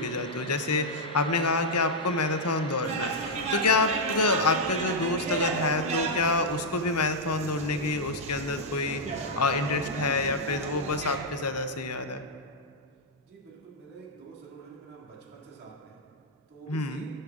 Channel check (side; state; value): both; normal; correlation -0.04